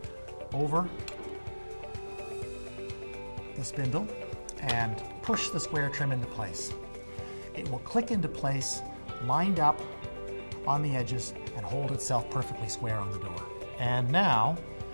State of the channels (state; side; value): inverted; both; correlation -1.00